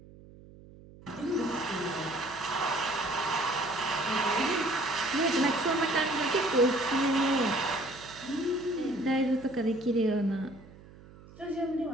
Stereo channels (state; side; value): noise; right; hum, 21 dB below the sound